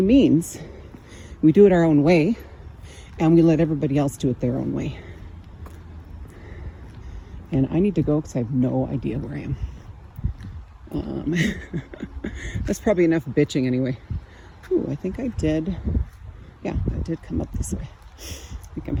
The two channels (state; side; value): identical; both; correlation 1.00